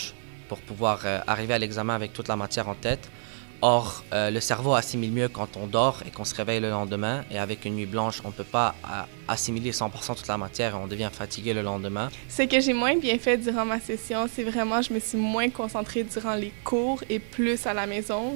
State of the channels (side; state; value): left; silent; digital silence